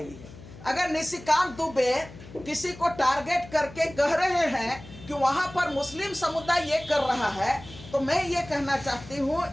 है। अगर निशिकांत दुबे किसी को टारगेट करके कह रहे हैं कि वहां पर मुस्लिम समुदाय ये कर रहा है, तो मैं ये कहना चाहती हूँ,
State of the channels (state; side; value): noise; left; hum, 17 dB below the sound